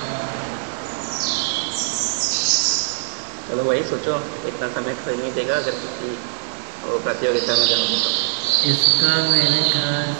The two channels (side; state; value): left; silent; 63 dB below the other